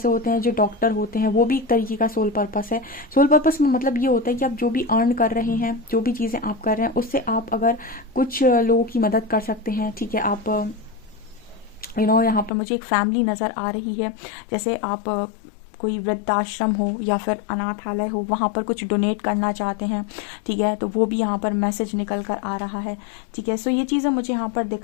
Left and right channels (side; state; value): right; drops out; at 12.5 s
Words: होते हैं जो डॉक्टर होते हैं, वो भी एक तरीके का सोल पर्पस है। सोल पर्पस में मतलब ये होता है कि आप जो भी अर्न कर रहे हैं, जो भी चीज़ें आप कर रहे हैं, उससे आप अगर कुछ लोगों की मदद कर सकते हैं। ठीक है, आप यहाँ पर मुझे एक फैमिली नज़र आ रही है, जैसे आप कोई वृद्धाश्रम हो या फिर अनाथालय हो, वहाँ पर कुछ डोनेट करना चाहते हैं। ठीक है, तो वो भी यहाँ पर मैसेज निकल कर आ रहा है। ठीक है, सो ये चीज़ें मुझे यहाँ पर